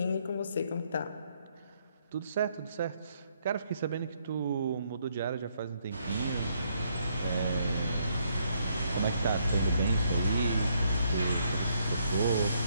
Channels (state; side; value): inverted; both; correlation -0.72